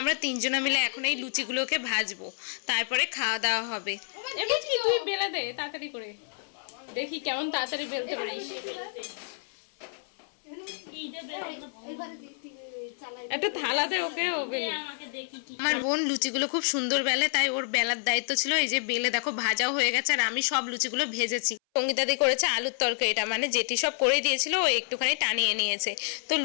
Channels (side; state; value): right; silent; 59 dB below the other